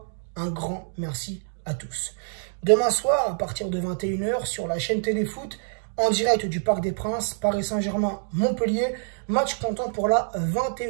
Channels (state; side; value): silent; left; digital silence